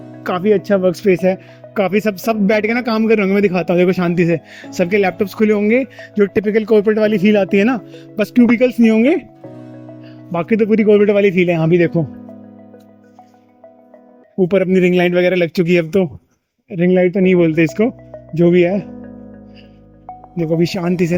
काफ़ी अच्छा वर्क स्पेस है। काफ़ी सब बैठ के ना काम कर रहे होंगे, मैं दिखाता हूँ, देखो शांति से सबके लैपटॉप्स खुले होंगे, जो टिपिकल कॉर्पोरेट वाली फील आती है ना, बस क्यूबिकल्स नहीं होंगे, बाकी तो पूरी कॉर्पोरेट वाली फील है। यहाँ भी देखो ऊपर अपनी रिंग लाइट वगैरह लग चुकी है, अब तो रिंग लाइट तो नहीं बोलते इसको, जो भी है। देखो अभी शांति से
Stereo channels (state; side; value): identical; both; correlation 1.00